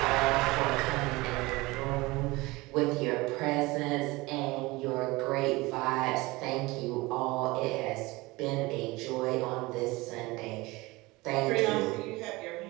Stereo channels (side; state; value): left; quieter; 22.1 dB